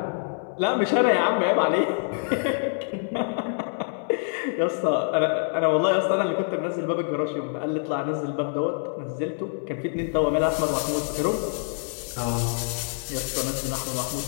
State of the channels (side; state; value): right; silent; 61 dB below the other